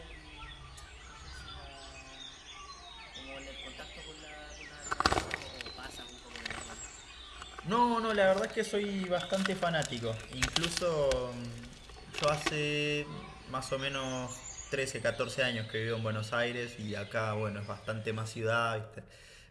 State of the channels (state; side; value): identical; both; correlation 1.00